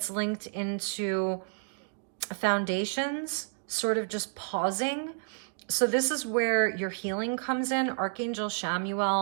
linked into foundations, sort of just pausing. So this is where your healing comes in. Archangel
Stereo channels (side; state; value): left; silent; digital silence